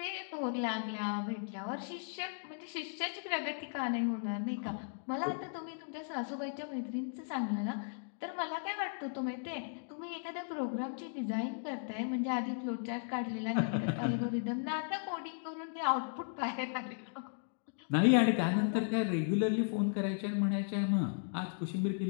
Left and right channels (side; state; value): right; silent; digital silence